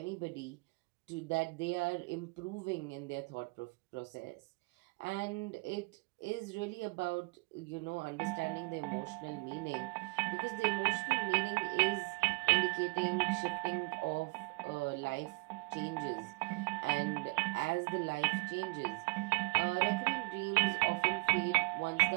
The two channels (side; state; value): left; quieter; 28.0 dB